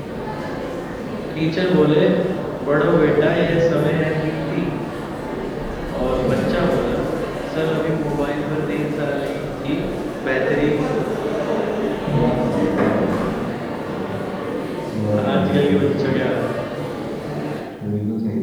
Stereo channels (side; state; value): both; identical; correlation 1.00